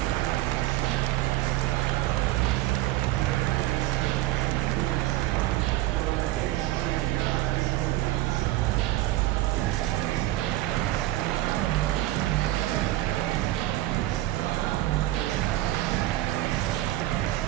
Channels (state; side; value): quieter; left; 16.0 dB